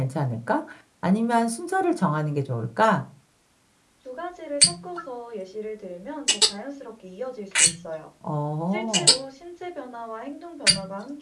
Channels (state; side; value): identical; both; correlation 1.00